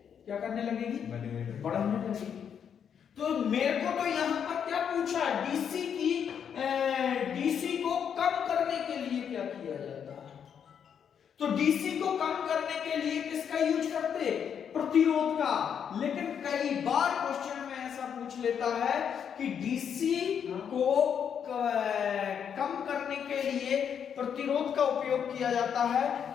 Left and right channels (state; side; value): quieter; right; 7.9 dB